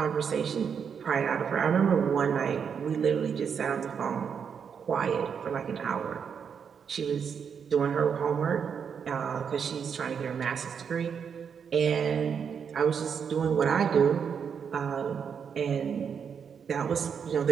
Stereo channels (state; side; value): quieter; left; 7.0 dB